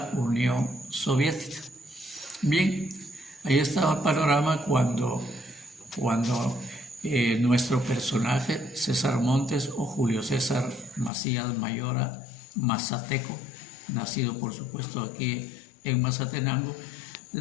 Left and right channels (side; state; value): right; drops out; at 11.1 s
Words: Unión Soviética. Bien, ahí estaba el panorama cuando nuestro personaje, César Montes o Julio César Macías Mayora Mazateco, nacido por supuesto aquí en Mazatenango,